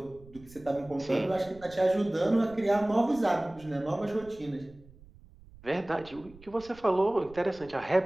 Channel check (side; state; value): right; noise; rumble, 22 dB below the sound